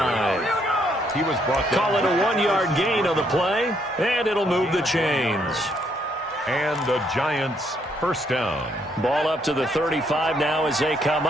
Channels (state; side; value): normal; both; correlation 0.72